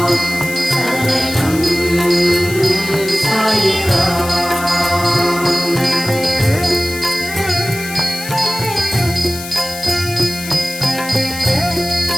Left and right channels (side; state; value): left; noise; hiss, 11 dB below the sound